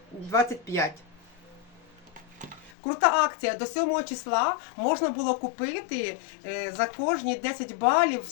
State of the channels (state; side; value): drops out; right; at 2.7 s